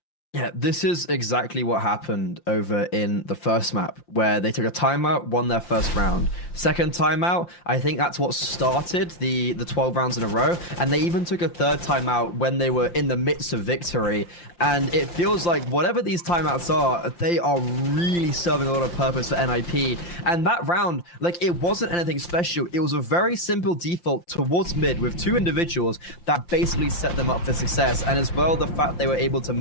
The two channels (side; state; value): right; late; 5.8 ms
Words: Yeah, this is exactly what happened over in the first map, where they took a timeout, won their first round. Second timeout, I think that's what started the 12 rounds in a row, and they even took a third timeout when they were in the midst of victory. And it feels like whatever these timeouts are, they are really serving a lot of purpose for NIP. And that round, like, it wasn't anything special. It was a very simple default towards mid with 2 individuals that basically set them up for success. And as well, the fact they were able to